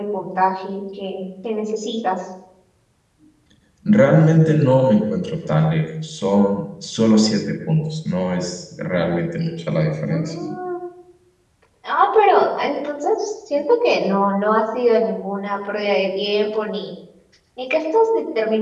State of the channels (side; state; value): both; identical; correlation 1.00